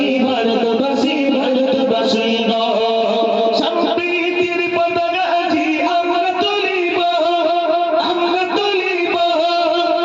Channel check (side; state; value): both; identical; correlation 1.00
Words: ভারতবাসী ভারতবাসী গো। সম্প্রীতির পতাকা আজি আমরা তুলিব, আমরা তুলিব,